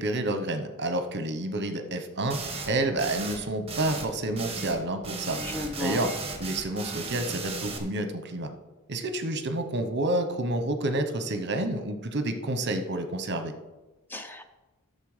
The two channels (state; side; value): normal; both; correlation 0.29